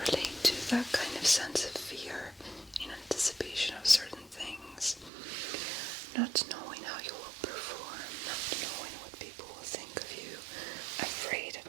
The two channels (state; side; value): drops out; left; at 5.1 s